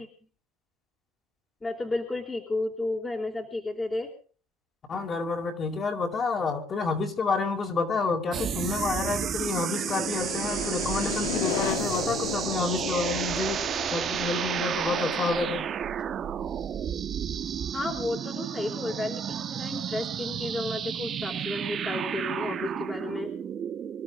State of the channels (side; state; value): both; normal; correlation 0.64